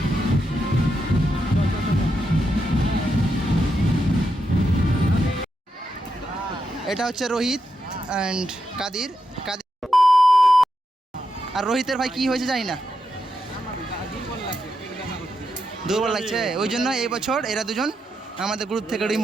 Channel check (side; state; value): both; normal; correlation 0.84